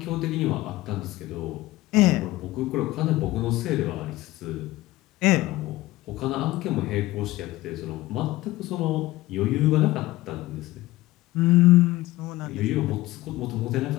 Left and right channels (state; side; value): quieter; right; 17.8 dB